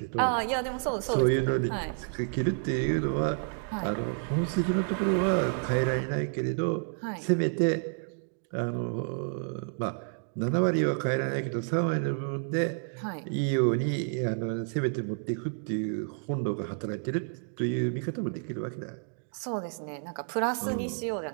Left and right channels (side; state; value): left; silent; 58 dB below the other